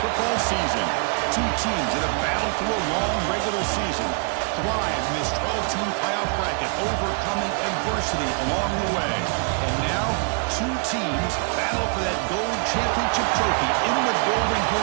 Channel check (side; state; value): left; quieter; 39.9 dB